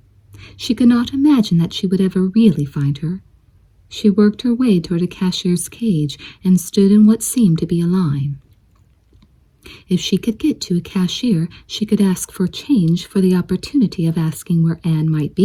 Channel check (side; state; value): both; identical; correlation 1.00